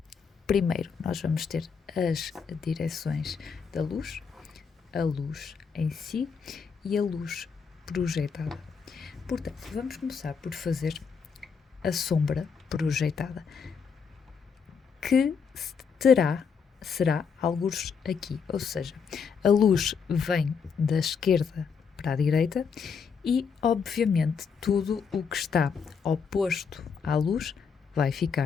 Primeiro, nós vamos ter as direções da luz, a luz em si e a luz projetada. Portanto, vamos começar por fazer a sombra projetada, que será algures aqui, ou seja, a luz vem da esquerda para a direita e, obviamente, tudo o que está oposto à luz vai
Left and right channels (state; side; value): quieter; right; 6.1 dB